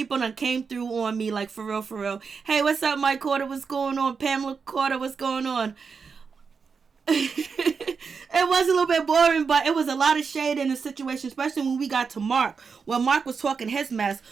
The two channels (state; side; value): quieter; left; 5.5 dB